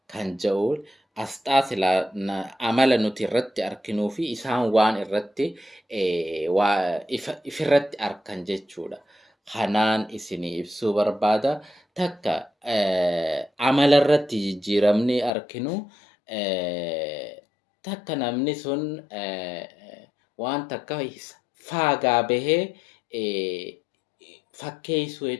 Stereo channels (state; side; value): drops out; right; at 15.3 s